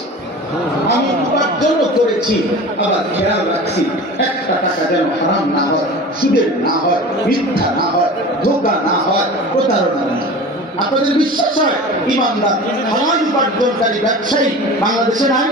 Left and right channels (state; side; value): normal; both; correlation 0.36